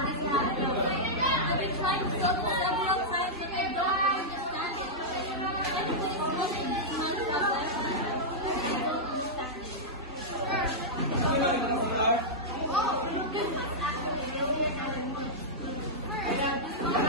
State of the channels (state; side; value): normal; both; correlation -0.09